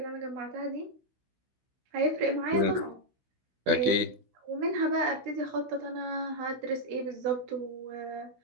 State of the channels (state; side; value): late; left; 16 ms